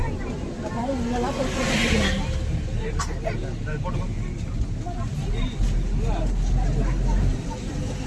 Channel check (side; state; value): both; identical; correlation 1.00